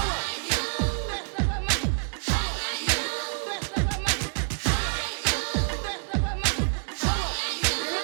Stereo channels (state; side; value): silent; left; digital silence